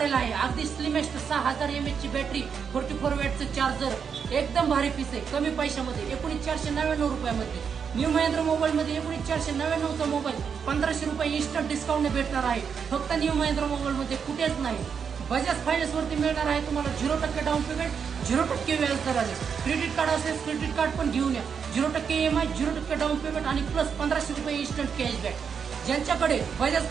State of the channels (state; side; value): quieter; left; 6.7 dB